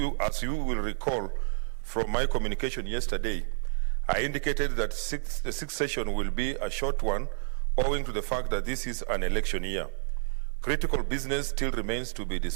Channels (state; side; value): silent; left; 58 dB below the other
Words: recall from my communication yesterday, I indicated that the sixth session will be a short one owing to the fact that this is an election year. Critical business still remains to be